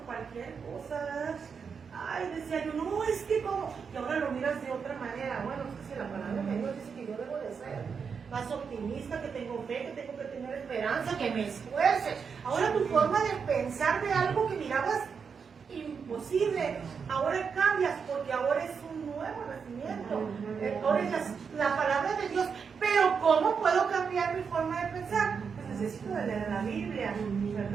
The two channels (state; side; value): quieter; left; 6.1 dB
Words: cosa, ¿verdad? Ay, decía yo, no, es que como, y ahora lo miras de otra manera. Bueno, es que si la palabra de Dios dice que yo debo de ser más optimista, que tengo fe, que tengo que tener esperanza, que me esfuerce. Ahora tu forma de pensar de algo que mirabas imposible, ahora cambias, porque ahora es un nuevo nacimiento. Ahora es la palabra de Dios. Pero ¿cómo puedo cambiar mi forma de pensar? Pues necesito de leer la Biblia,